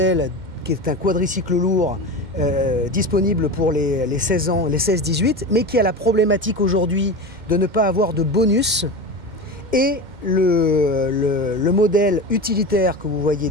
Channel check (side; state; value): left; late; 2.1 ms